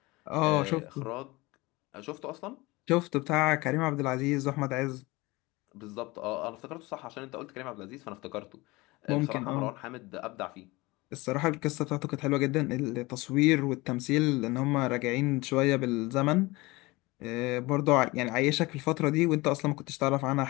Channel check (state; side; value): quieter; right; 22.3 dB